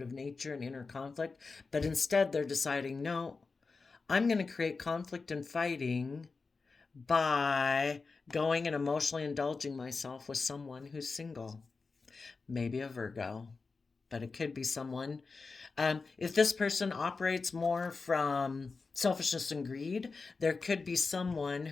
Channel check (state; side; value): quieter; right; 4.3 dB